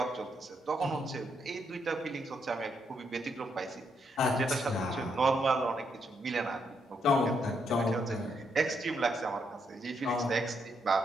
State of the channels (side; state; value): both; normal; correlation 0.77